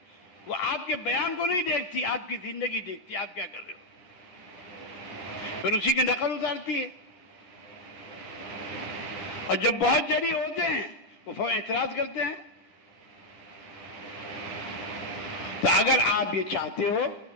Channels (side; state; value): right; late; 9.9 ms